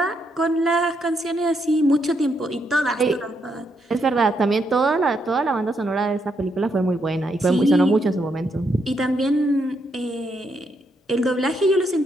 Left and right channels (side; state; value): both; normal; correlation 0.78